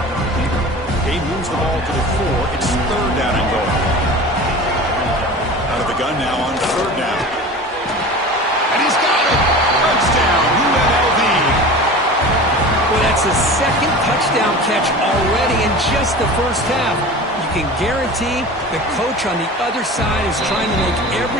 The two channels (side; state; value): both; normal; correlation 0.35